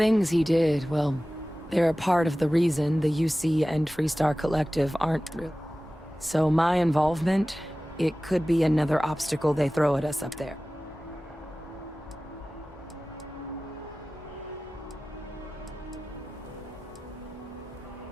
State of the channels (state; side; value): normal; both; correlation 0.96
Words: he did, well, they're a part of the reason the UC and Freestar Collective aren't real. So my involvement, it could be another obstacle they throw at us up there.